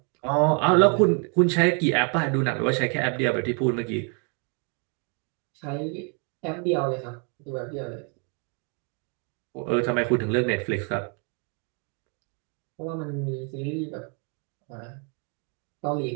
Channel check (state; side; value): quieter; left; 37.5 dB